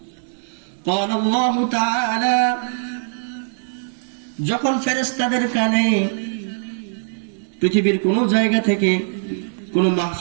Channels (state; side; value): silent; left; digital silence